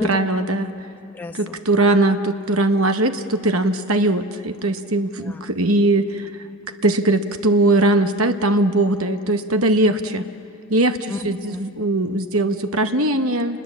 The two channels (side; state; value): both; normal; correlation 0.31